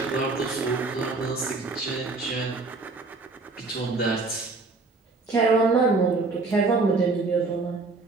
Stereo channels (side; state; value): left; quieter; 3.7 dB